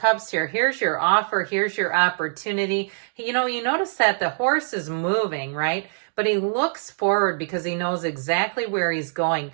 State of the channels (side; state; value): left; silent; digital silence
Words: here, here's your offer, here's your opportunity. You notice that the horse is moving, right? But he looks forward because he knows exactly where he's going.